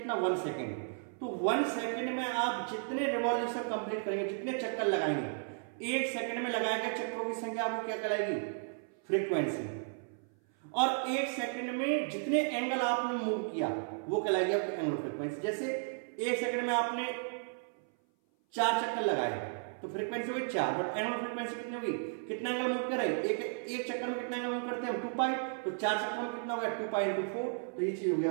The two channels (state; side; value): silent; left; 55 dB below the other